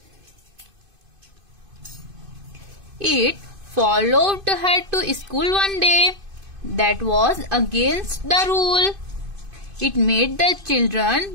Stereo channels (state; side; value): late; left; 2.5 ms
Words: It followed her to school one day. That was against the rule. It made the children